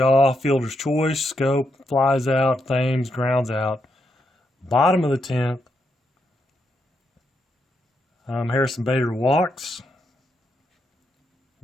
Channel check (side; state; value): both; normal; correlation 0.81